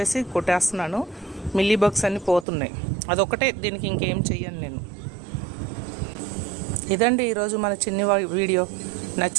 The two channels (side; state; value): left; drops out; at 2.5 s